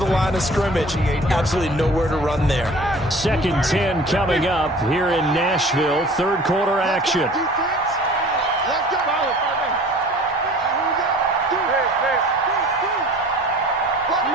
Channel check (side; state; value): both; normal; correlation 0.46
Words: line of scrimmage. Absolutely nowhere to run there. 2nd and 10 coming up here in Nashville. Third quarter action. Let's